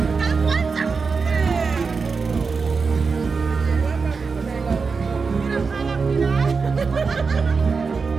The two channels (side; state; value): left; quieter; 4.9 dB